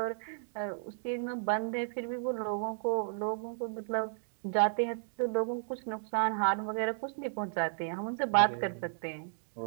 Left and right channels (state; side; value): silent; left; digital silence